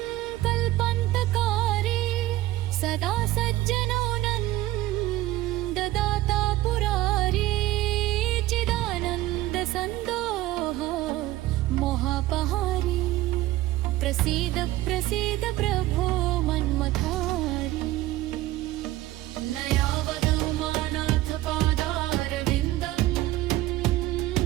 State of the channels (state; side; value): quieter; left; 16.2 dB